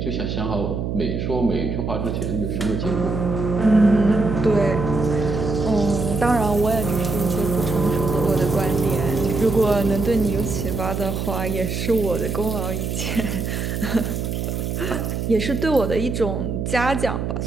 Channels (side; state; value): right; noise; hum, 2 dB below the sound